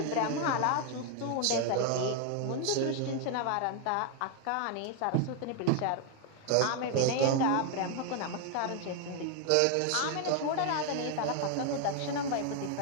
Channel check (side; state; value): both; different; correlation 0.01